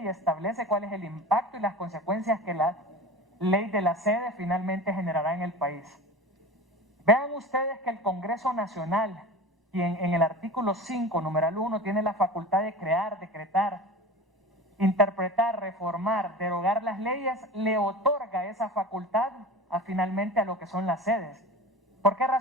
establece cuál es el impacto y las consecuencias que la ley de la sede finalmente generará en el país. Vean ustedes que el Congreso Nacional, quien en el artículo 5, numeral 1, tiene la facultad de crear, decretar, interpretar, reformar, derogar las leyes, le otorga esa facultad finalmente a lo que son las sedes. ¿Por qué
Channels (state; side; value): normal; both; correlation 0.34